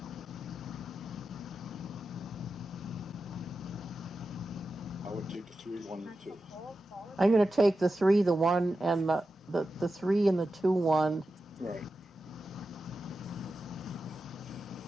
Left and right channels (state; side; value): normal; both; correlation 0.91